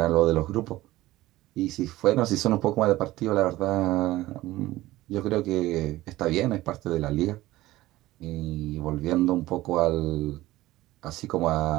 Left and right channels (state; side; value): quieter; left; 17.1 dB